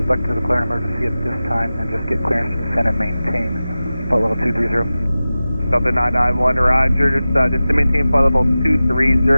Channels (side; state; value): both; inverted; correlation -0.95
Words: like to declare an emergency at this time and just get clearance to descend and maintain flight level 230. Delta 991, roger. Just to maintain flight level 230